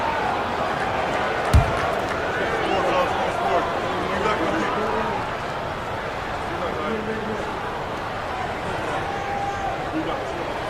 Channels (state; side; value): identical; both; correlation 1.00